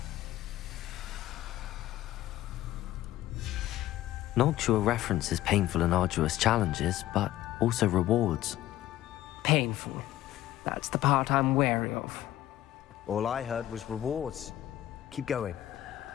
Noctua references painful and arduous challenges, but also rewards. Painful. That's the part I'm wary of. All I heard was rewards. Keep going.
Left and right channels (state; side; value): quieter; right; 14.2 dB